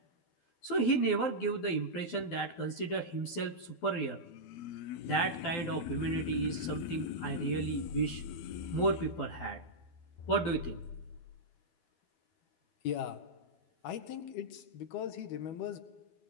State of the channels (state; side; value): late; right; 12 ms